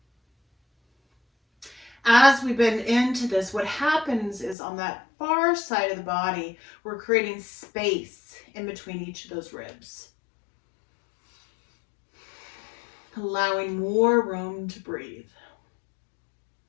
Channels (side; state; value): right; drops out; at 4.5 s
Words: As we bend into this, what happens is on that far side of the body, we're creating space in between each of those ribs, allowing more room to breathe.